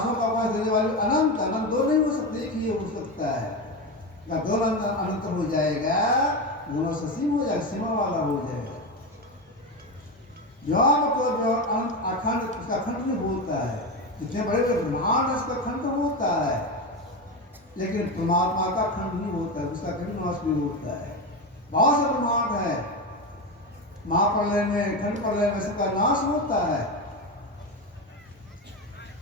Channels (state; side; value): normal; both; correlation 0.17